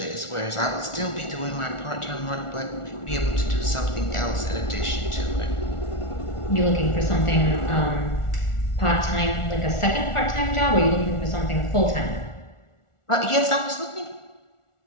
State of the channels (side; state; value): right; late; 1.4 ms